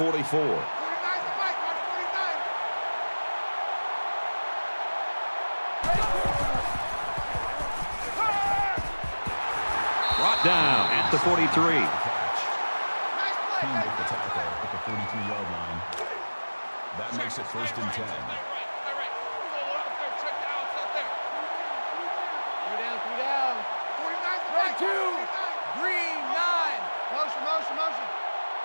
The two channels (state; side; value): inverted; both; correlation -1.00